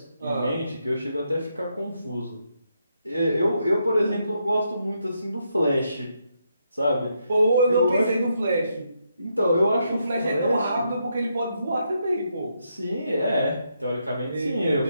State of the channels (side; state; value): both; inverted; correlation -0.79